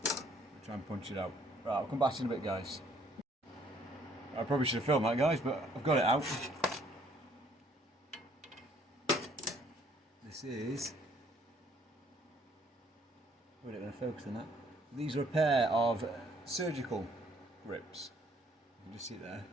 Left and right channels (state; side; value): normal; both; correlation 0.63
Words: Try and punch it out. Right, I'll come back in a bit, guys. I probably should have filmed that, guys, but I've got it out. This is... We're not going to focus on that. These are a pair of surgical grips. You can just see it there.